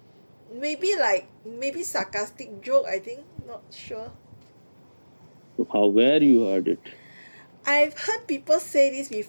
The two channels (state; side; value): inverted; both; correlation -1.00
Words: maybe sarcastic joke. I think not sure. How, where you heard it? I've heard people say this